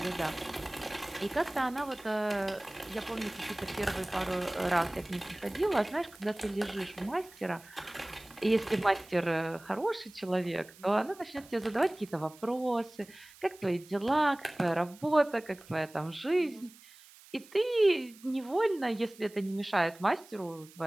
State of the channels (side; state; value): right; noise; hiss, 22 dB below the sound